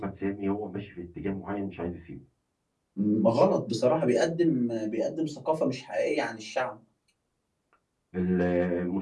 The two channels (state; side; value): identical; both; correlation 1.00